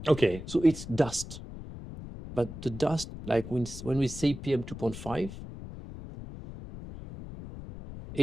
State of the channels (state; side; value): noise; left; rumble, 11 dB below the sound